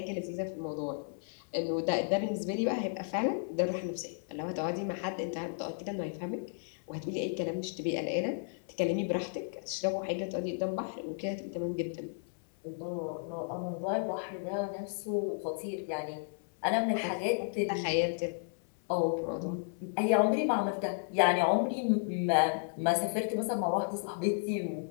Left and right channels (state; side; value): silent; right; 56 dB below the other